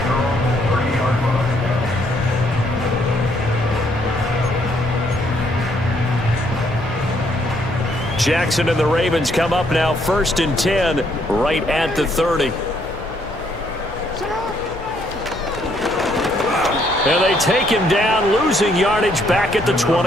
Jackson and the Ravens come up now 1st and 10 right at the 30. And they take him down, losing yardage back at the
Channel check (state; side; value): normal; both; correlation 0.69